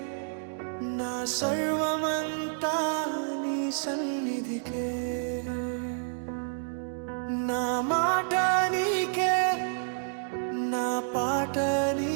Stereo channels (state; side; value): silent; left; digital silence